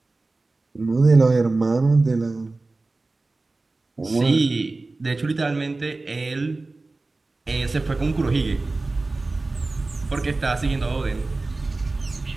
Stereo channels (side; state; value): left; quieter; 3.3 dB